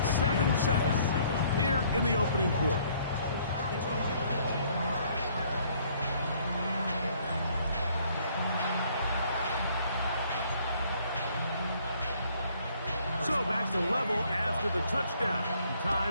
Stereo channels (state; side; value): inverted; both; correlation -0.62